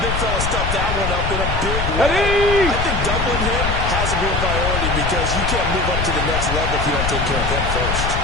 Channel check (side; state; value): left; noise; rumble, 2 dB below the sound